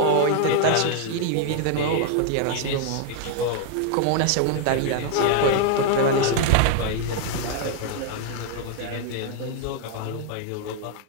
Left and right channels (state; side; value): different; both; correlation 0.00